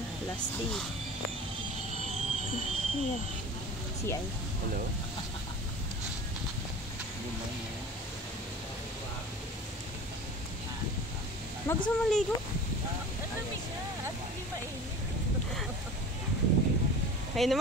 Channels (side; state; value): both; normal; correlation 0.39